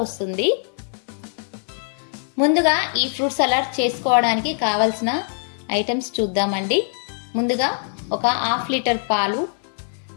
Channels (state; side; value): silent; right; 64 dB below the other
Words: వస్తుంది. ముందుగా ఈ ఫ్రూట్ సలాడ్ చేసుకోవడానికి కావాల్సిన ఐటమ్స్ చూద్దామండి. ముందుగా ఒక హాఫ్ లీటర్ పాలు,